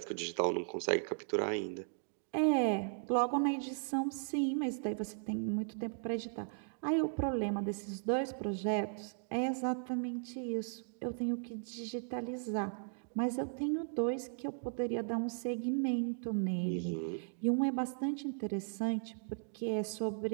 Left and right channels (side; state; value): left; silent; digital silence